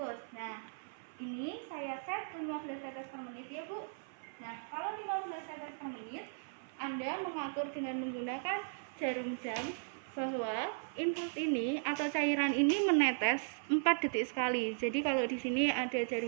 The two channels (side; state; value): left; silent; 53 dB below the other